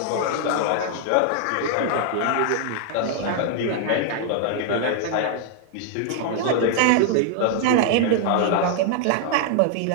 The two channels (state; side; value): different; both; correlation 0.00